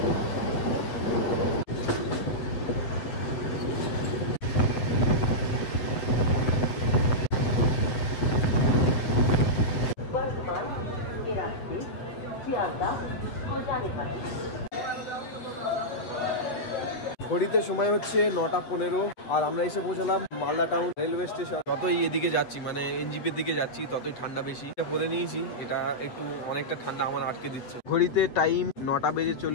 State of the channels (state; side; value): late; right; 8.1 ms